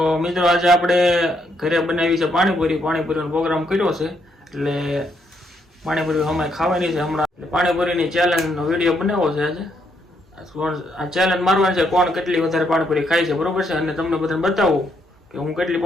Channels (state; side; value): normal; both; correlation 0.75